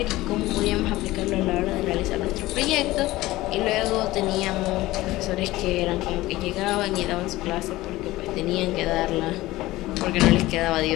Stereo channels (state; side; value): quieter; right; 17.9 dB